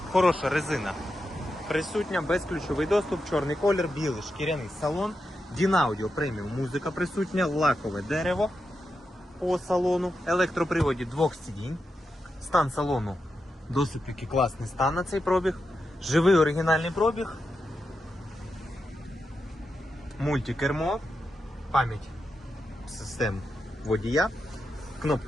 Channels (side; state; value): both; normal; correlation 0.87